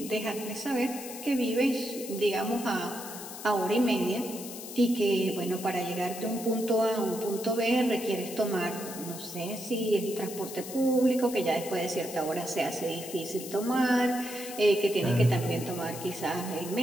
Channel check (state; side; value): noise; left; hiss, 11 dB below the sound